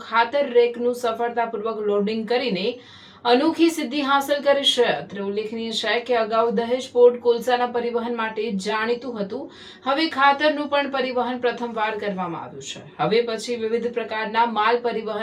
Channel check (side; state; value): both; identical; correlation 1.00